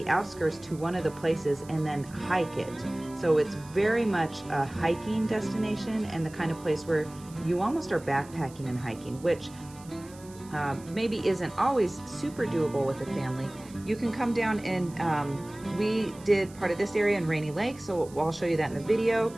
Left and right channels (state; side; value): noise; right; hiss, 22 dB below the sound